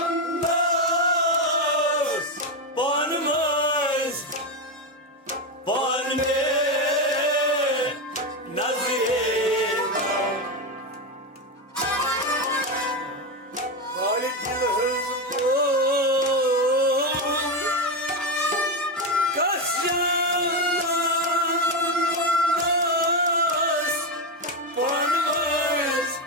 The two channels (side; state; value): both; normal; correlation 0.11